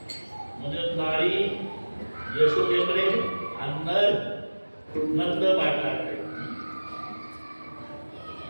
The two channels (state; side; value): inverted; both; correlation -1.00